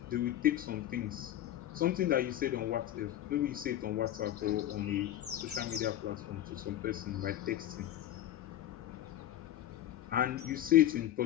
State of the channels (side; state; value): right; quieter; 12.5 dB